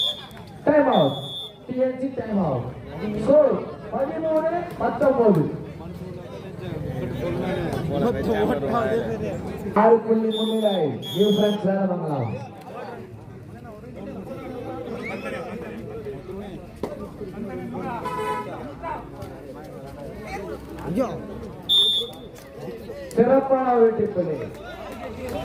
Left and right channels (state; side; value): identical; both; correlation 1.00